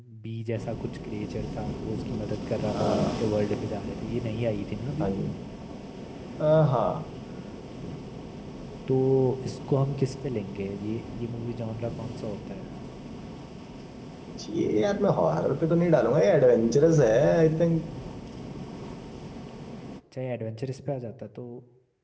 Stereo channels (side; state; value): both; identical; correlation 1.00